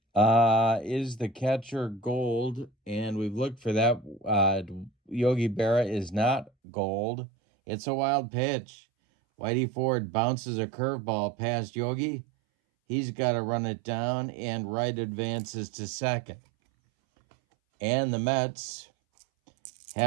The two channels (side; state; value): left; drops out; at 6.5 s